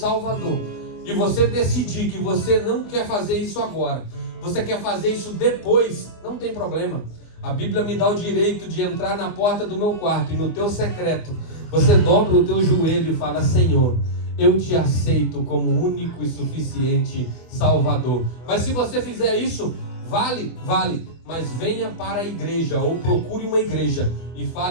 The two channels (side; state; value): right; late; 24 ms